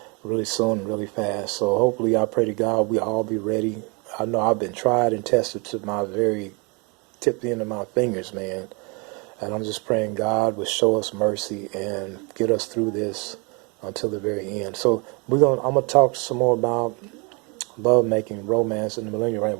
really soon and really fast. So hopefully, I pray to God we all be ready. I know I've been tried and tested to my very tip the end of my fingers, man. And I'm just praying God will show us mercy and get us through this until the very end. So I'm gonna talk some more about love making, romance in the millennial reign.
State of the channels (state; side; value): quieter; left; 31.1 dB